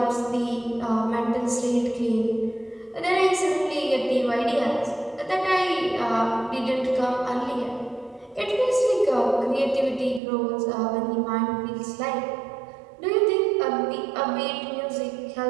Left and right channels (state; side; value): drops out; left; at 10.2 s